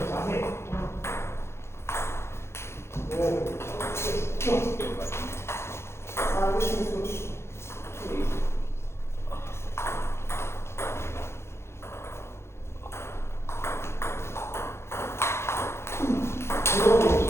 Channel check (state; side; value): late; right; 0.13 ms